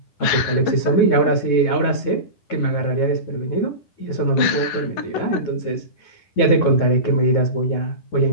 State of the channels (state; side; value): late; right; 10 ms